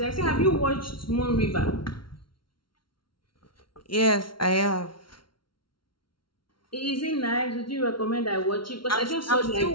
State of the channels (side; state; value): right; late; 0.73 ms